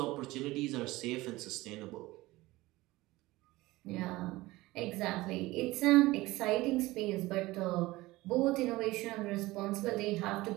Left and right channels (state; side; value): quieter; left; 19.3 dB